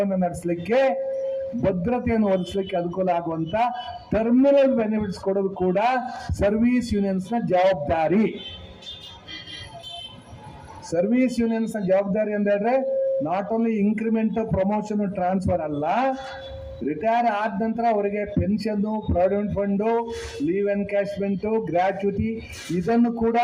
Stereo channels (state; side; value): identical; both; correlation 1.00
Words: ನಡೆಸಲಿಕ್ಕೆ, ಭದ್ರತೆಯನ್ನು ಒದಗಿಸಲಿಕ್ಕೆ ಅನುಕೂಲ ಆಗುವಂತ ಟರ್ಮಿನಲ್ ಬೆನಿಫಿಟ್ಸ್ ಕೊಡೋದು ಕೂಡ ಸರ್ವಿಸ್ ಯೂನಿಯನ್ಸ್ನ ಜವಾಬ್ದಾರಿ. ಸರ್ವಿಸ್ ಯೂನಿಯನ್ಸ್ನ ಜವಾಬ್ದಾರಿ ಅಂತ ಹೇಳಿದ್ರೆ not only increment, promotion, transfer ಅಲ್ಲ, ರಿಟೈರ್ ಆದ ನಂತರ ಅವರಿಗೆ pension, provident fund, leave encashment, gratuity ಇದನ್ನು ಕೂಡ